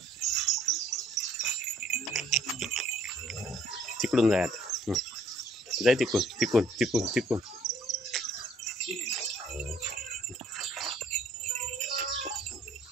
तिकडून जाय आता जाय तिकून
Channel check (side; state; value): both; normal; correlation 0.62